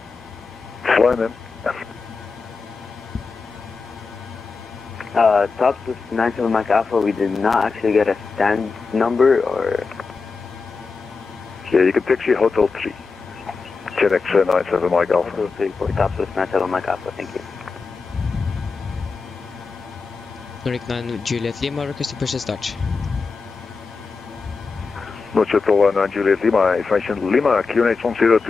fly then. Tops is 97 Mike Alpha, we did not actually get a stand number or... Yeah, you can taxi Hotel 3. Gen X 97 Mike Alpha. Hotel 3 for Tops is 97 Mike Alpha, thank you. Nordic 9 Juliet Lima, requesting push and start. Roger, 9 Juliet Lima, information Lima, QNH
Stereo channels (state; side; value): quieter; right; 4.5 dB